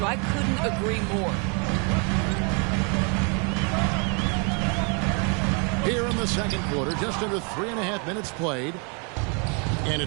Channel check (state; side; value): quieter; left; 35.6 dB